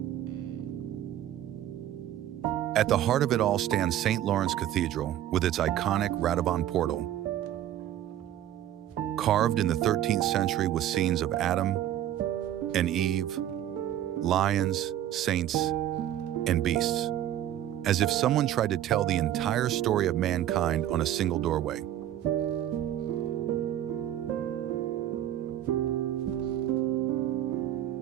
At the heart of it all stands St. Lawrence Cathedral with its iconic Radovan portal, carved in the 13th century with scenes of Adam and Eve, lions, saints, and beasts, as if someone tried to tell the entire story of mankind on a single doorway.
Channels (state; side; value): quieter; left; 12.0 dB